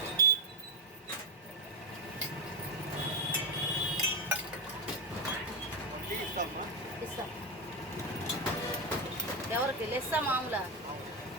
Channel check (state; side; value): normal; both; correlation 0.08